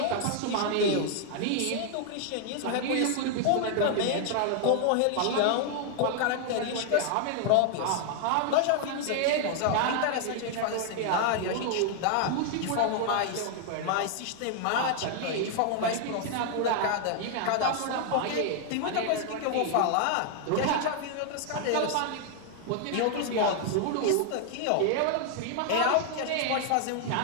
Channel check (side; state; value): both; different; correlation 0.00